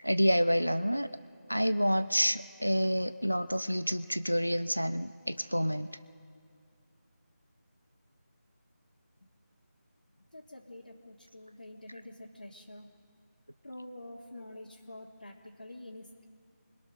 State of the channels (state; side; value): inverted; both; correlation -0.99